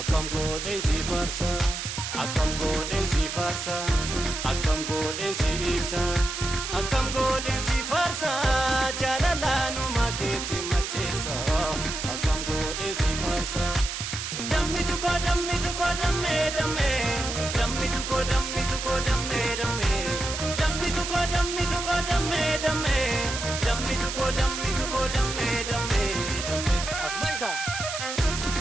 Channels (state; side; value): noise; right; hiss, 5 dB below the sound